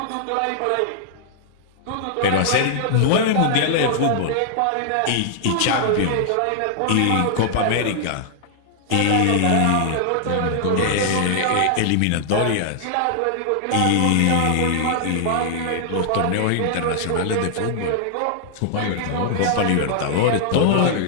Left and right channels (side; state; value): both; different; correlation -0.01